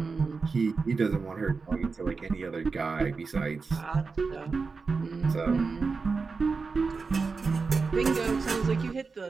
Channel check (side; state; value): left; quieter; 4.6 dB